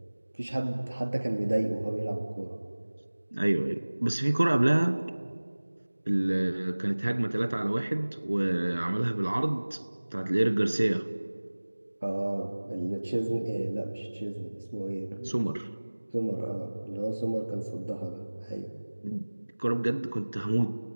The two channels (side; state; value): both; inverted; correlation -1.00